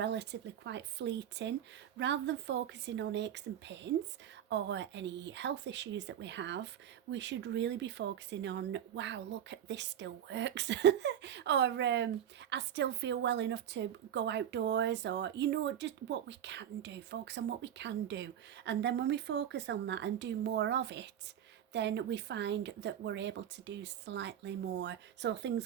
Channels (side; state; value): left; quieter; 9.9 dB